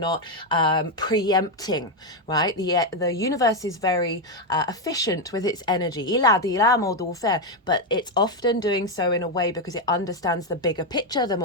preempting, right? The universe is very efficient with its energy, but it's often doing so in a way because it understands the bigger picture, the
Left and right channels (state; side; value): normal; both; correlation 0.05